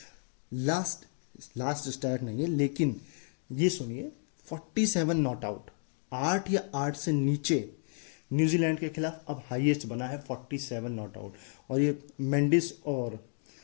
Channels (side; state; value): right; silent; 55 dB below the other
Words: लास्ट स्टार्ट नहीं है, लेकिन ये सुनिए, 47 नॉट आउट, 8 या 8 से नीचे न्यूजीलैंड के खिलाफ अब हाईएस्ट बना है 47 नॉट आउट। और ये मेंडिस और